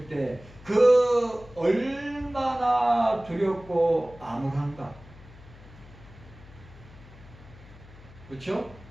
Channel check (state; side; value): noise; left; hum, 20 dB below the sound